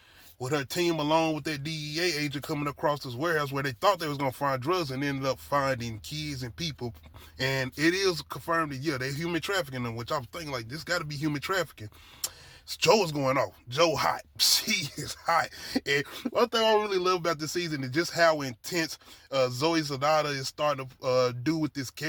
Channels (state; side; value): identical; both; correlation 1.00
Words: with her team along with that DEA agent coming across this warehouse where they thought they was going to find drugs and ended up finding kids and people. And it is confirmed that, yeah, they're human trafficking them, which I'm thinking, like, this got to be human trafficking. Joe is going off. Joe hot. She is hot. And one thing I really love about this season is just how intense Zoe Saldana is starting to do with this